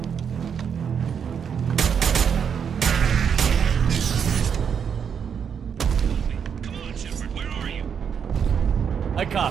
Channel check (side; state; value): left; quieter; 7.3 dB